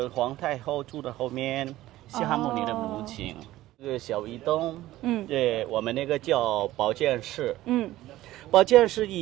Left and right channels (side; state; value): left; quieter; 15.7 dB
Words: 皇太后住的后面，西哈穆尼的母亲。这个小移动，对，我们那个叫保健室，保健室